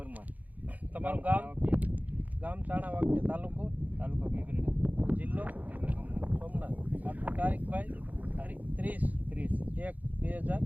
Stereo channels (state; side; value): late; left; 0.079 ms